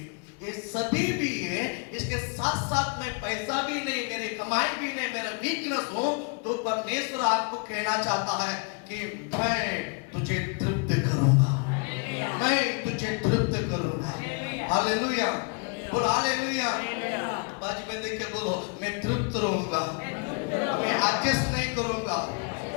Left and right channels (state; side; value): quieter; right; 36.1 dB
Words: ये सभी भी है, इसके साथ साथ में पैसा भी नहीं, मेरी कमाई भी नहीं, मेरा वीकनेस हो, तो परमेश्वर आपको कहना चाहता है कि मैं तुझे तृप्त करूंगा, मैं तुझे तृप्त करूंगा। हालेलुया, बोल हालेलुया। बाजू में देख के बोलो, मैं तृप्त रहूंगा, मैं एडजस्ट नहीं करूंगा।